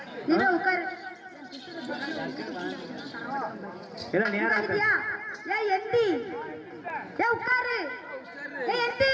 நீ உட்காரு எல்லாம் நேரா இருக்கியா ஏய் எந்தி ஏய் உட்காரு ஏய் எந்தி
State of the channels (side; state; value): both; identical; correlation 1.00